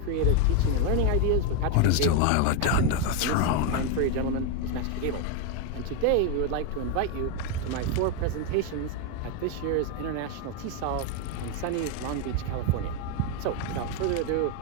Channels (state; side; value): different; both; correlation 0.02